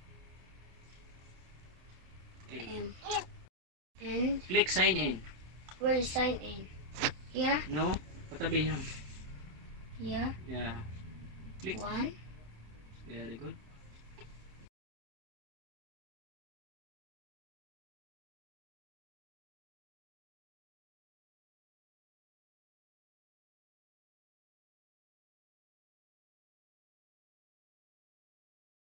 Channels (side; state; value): left; late; 27 ms